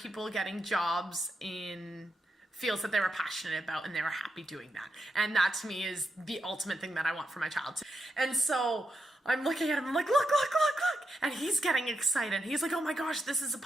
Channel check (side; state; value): both; normal; correlation 0.85